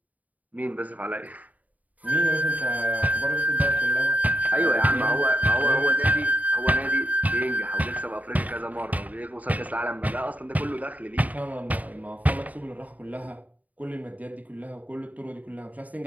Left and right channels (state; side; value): late; left; 0.074 ms